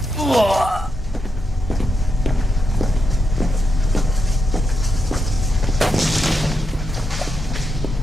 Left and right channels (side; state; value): both; normal; correlation 0.83